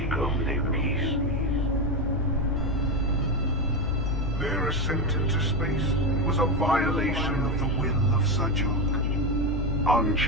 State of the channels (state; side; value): normal; both; correlation 0.13